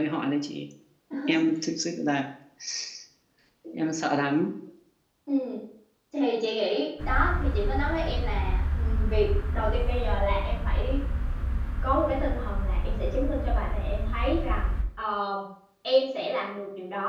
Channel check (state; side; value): identical; both; correlation 1.00